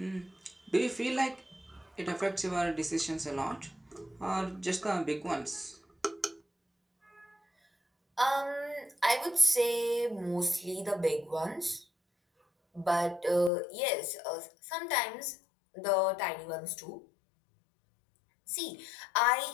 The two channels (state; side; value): drops out; right; at 13.5 s